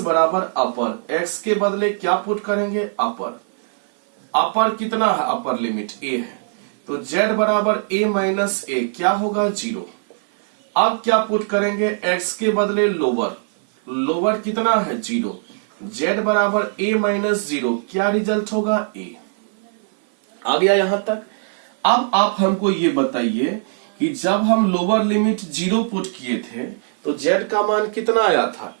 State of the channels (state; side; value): silent; left; 56 dB below the other